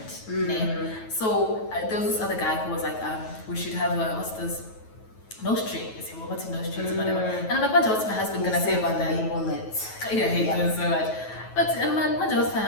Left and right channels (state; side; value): late; right; 9.2 ms